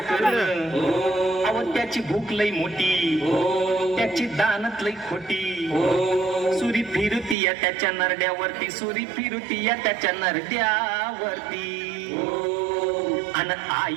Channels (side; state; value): left; drops out; at 7.4 s